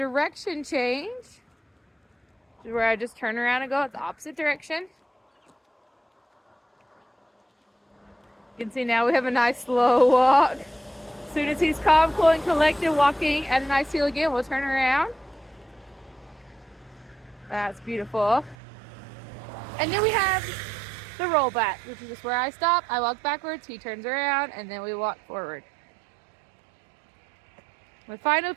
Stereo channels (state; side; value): drops out; left; at 18.6 s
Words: change, where I just turn around and go the opposite direction. You can see now we have a nice slow walk. As soon as he's calm, cool, and collected, walking at a nice heel again, we'll turn around. That's beautiful. And then we have the roll back, which is just where I stop, I walk backwards, he turns around, and then we walk forward. My final